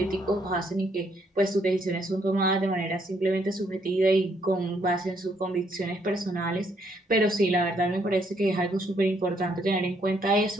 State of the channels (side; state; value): both; normal; correlation 0.71